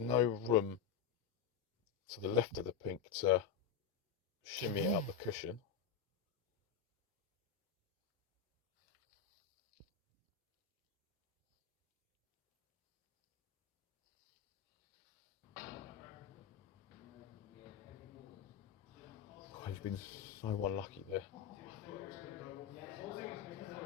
no room to the left of the pink to shimmy it up the cushion. God, he's been so unlucky there.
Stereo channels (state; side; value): quieter; right; 7.7 dB